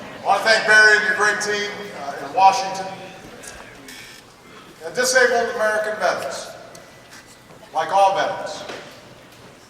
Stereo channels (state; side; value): identical; both; correlation 1.00